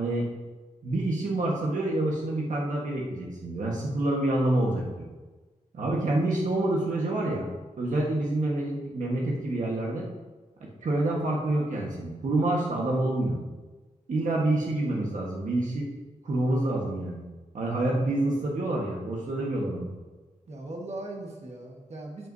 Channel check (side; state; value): both; normal; correlation 0.80